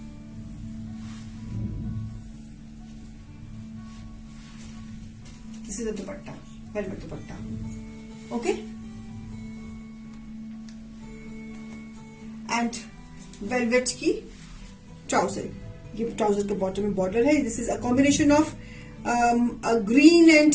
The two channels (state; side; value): identical; both; correlation 1.00